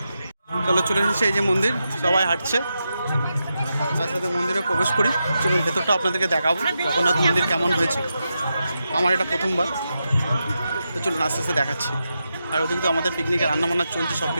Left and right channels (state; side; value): inverted; both; correlation -0.87